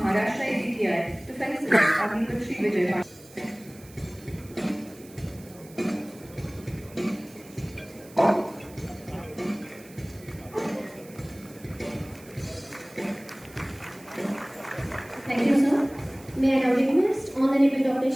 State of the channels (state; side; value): noise; right; hiss, 22 dB below the sound